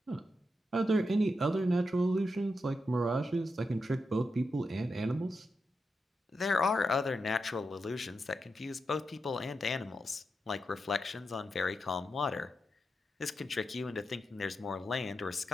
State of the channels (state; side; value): normal; both; correlation 0.86